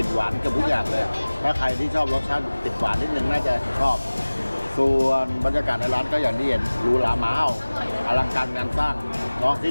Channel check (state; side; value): inverted; both; correlation -1.00